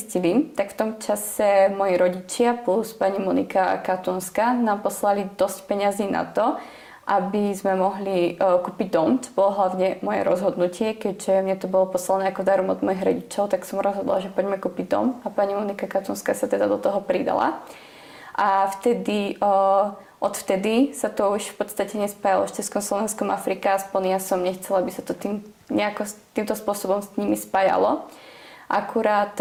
tak v tom čase moji rodičia plus pani Monika Katúnska nám poslali dosť peňazí na to, aby sme mohli kúpiť dom. To bolo hlavne moje rozhodnutie, keďže mne to bolo poslané ako darom od mojich rodičov, tak som rozhodla, že poďme kúpiť dom a pani Monika Katúnska sa teda do toho pridala. A odvtedy sa to už v podstate nespájalo s Československom Afrika, aspoň ja som nechcela, aby sa to týmto spôsobom s nimi spájalo. Akurát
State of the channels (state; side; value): identical; both; correlation 1.00